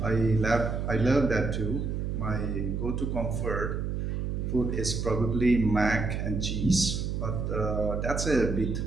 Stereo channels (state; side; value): noise; right; hum, 2 dB below the sound